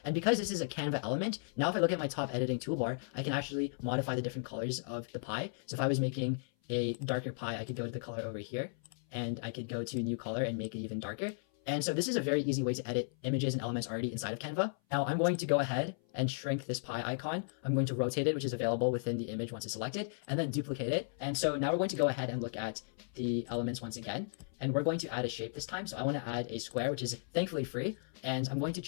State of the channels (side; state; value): right; silent; 54 dB below the other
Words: And because this is a Canva element, now if I look at my top editing toolbar, I can actually modify the different colors of the pie. So if I was making a darker pie, I could go to the color over here, and I could go to new color and make it even darker. And so this is a very easy way to edit images and elements already inside of Canva. Now I'm going to go ahead and shrink this pie icon. I'm going to rotate it, which is available within the image once it's selected, and then duplicate it. And so now we're going to go ahead and look at the elements once again. And we're going to add a shape this time. So I want to add a square, which is thankfully free. And I'm going to